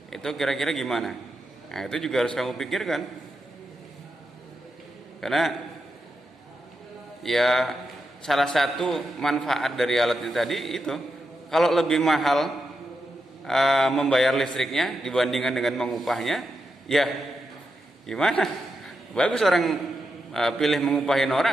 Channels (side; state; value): both; normal; correlation 0.86